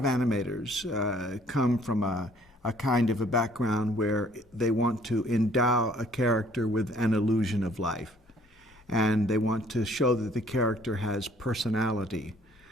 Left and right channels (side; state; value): both; normal; correlation 0.60